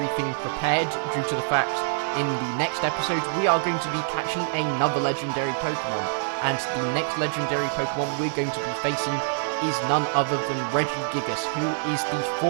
prepared due to the fact in the next episode we are going to be catching another legendary Pokemon, and the next legendary Pokemon we're going to be facing is none other than RegiGigas, who is the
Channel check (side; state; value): left; silent; 61 dB below the other